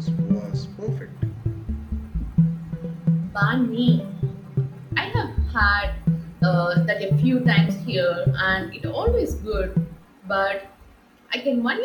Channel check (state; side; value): identical; both; correlation 1.00